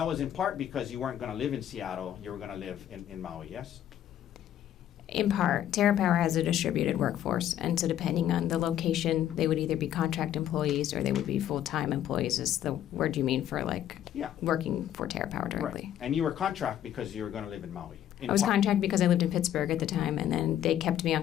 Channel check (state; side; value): quieter; right; 11.2 dB